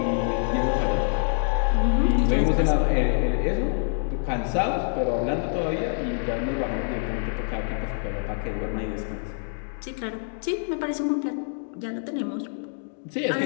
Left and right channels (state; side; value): silent; right; digital silence